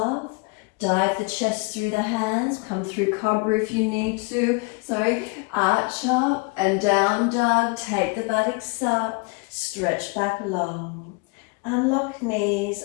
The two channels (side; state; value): right; quieter; 28.5 dB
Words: Dive the chest through the hands. Come through cobra if you need to. Arch up and down dog. Take the buttocks up. Stretch back long. Unlock knees,